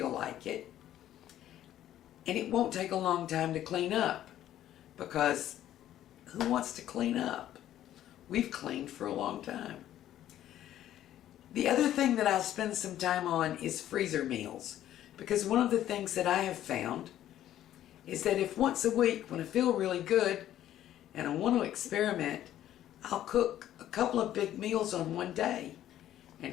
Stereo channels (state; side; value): quieter; right; 12.2 dB